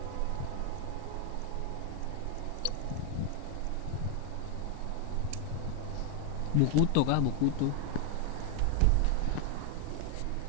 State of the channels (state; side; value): different; both; correlation 0.01